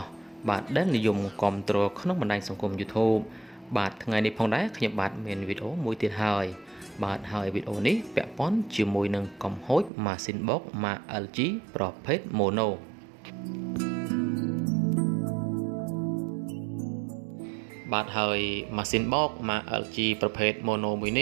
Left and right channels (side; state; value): left; drops out; at 9.9 s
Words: ់បាទដែលនិយមគាំទ្រក្នុងបណ្ដាញសង្គម YouTube បាទថ្ងៃនេះផងដែរខ្ញុំបាទមានវីដេអូមួយទៀតហើយហើយវីដេអូនេះពាក់ព័ន្ធជាមួយនឹងកំហូចម៉ាស៊ីនបោកម៉ាក LG ប្រភេទ Mono បាទហើយម៉ាស៊ីនបោកម៉ាក LG ប្រភេទ Mono មួយន